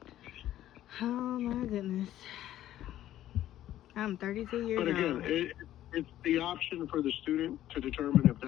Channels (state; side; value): quieter; right; 12.9 dB